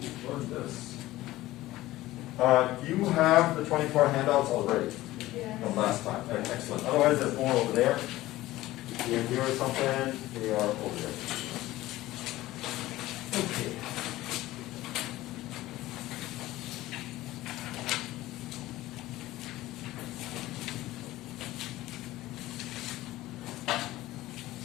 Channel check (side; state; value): right; quieter; 16.8 dB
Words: learn this. You have the 24 handouts already from last time. Excellent. Otherwise, there's more over there. Here or something, they are over there. Okay.